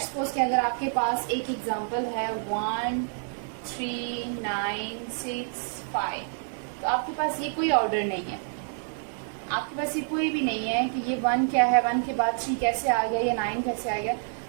सपोज कि अगर आपके पास एक एग्जांपल है 1 3 9 6 5, तो आपके पास ये कोई ऑर्डर नहीं है, आपके पास ये कोई भी नहीं है कि ये 1 क्या है, 1 के बाद 3 कैसे आ गया या 9 कैसे आ गया।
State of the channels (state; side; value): silent; left; 59 dB below the other